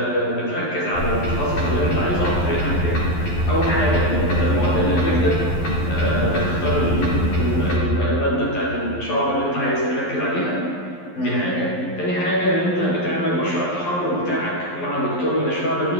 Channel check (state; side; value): late; right; 11 ms